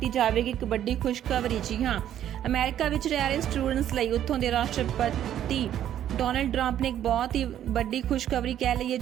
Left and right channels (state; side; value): quieter; left; 11.0 dB